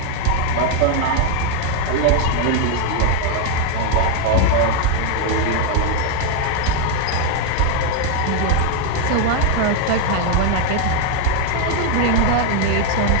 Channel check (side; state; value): both; different; correlation 0.01